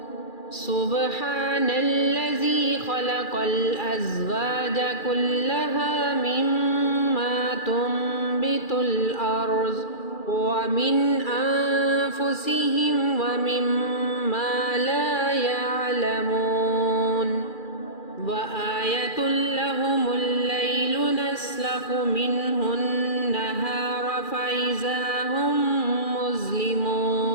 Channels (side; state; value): right; late; 2.4 ms